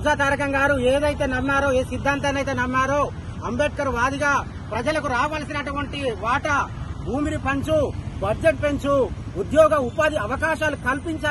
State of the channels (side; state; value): both; identical; correlation 1.00